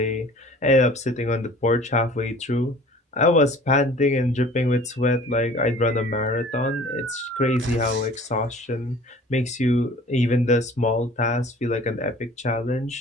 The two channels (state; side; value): normal; both; correlation 0.47